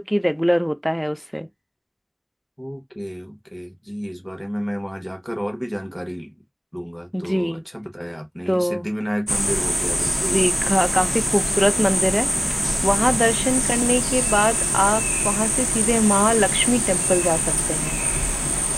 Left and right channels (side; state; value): both; identical; correlation 1.00